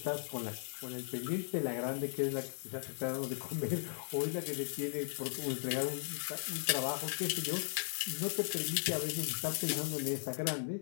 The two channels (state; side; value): silent; right; digital silence